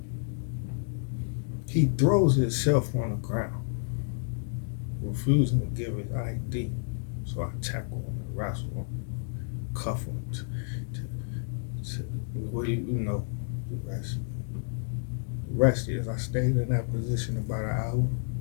He throws himself on the ground, refusing to give his ID. So I tackle him and wrestle him, cuff him. What do you know? The rest is I stayed in that position about an hour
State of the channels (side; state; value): right; silent; 58 dB below the other